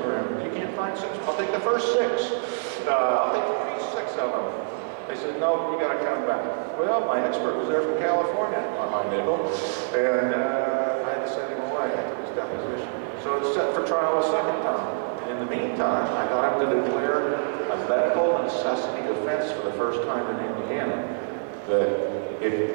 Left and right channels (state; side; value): silent; left; 61 dB below the other